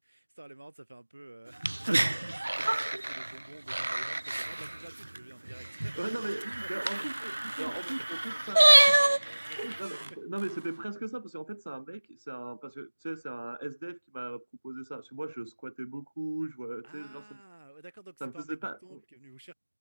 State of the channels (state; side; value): inverted; both; correlation -1.00